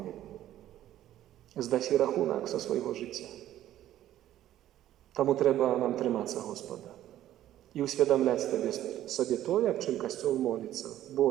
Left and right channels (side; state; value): left; quieter; 12.8 dB